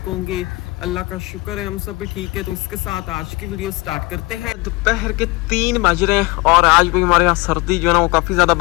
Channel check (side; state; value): right; quieter; 23.2 dB